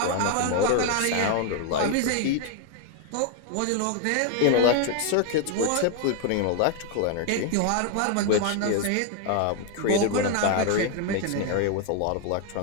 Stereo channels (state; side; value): different; both; correlation 0.00